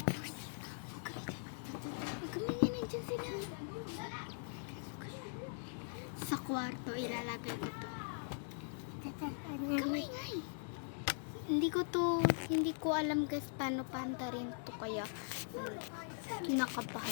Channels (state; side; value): silent; right; digital silence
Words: Kumingin, nandiyan sila. Sa kwarto, ilalagay ko to. Kumingay. Hindi ko alam guys paano pantarin to, kaya